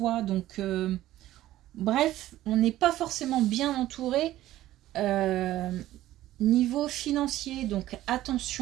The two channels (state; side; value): quieter; left; 14.6 dB